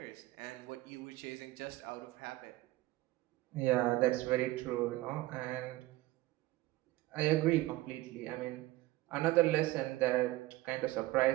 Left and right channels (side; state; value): left; quieter; 18.2 dB